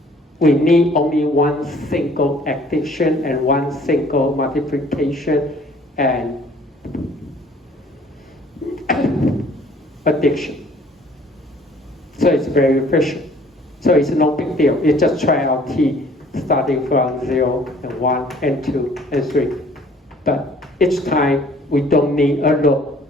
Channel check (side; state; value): both; normal; correlation 0.56